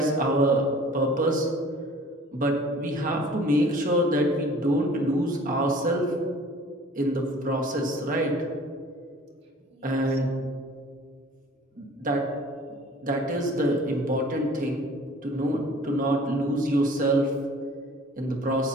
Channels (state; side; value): normal; both; correlation 0.49